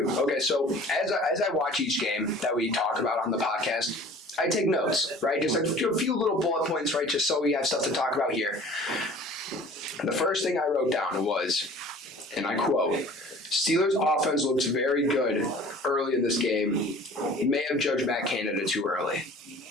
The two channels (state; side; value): normal; both; correlation 0.47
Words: Okay, so as I watch each game that we talk about on the podcast, I take notes, right? Just like a few little bullet points, right? Just so we have stuff to talk about here. The first thing I wrote down was, and I quote, Steelers' offense looks very good early in this game. He may have judged Matt Canada too early.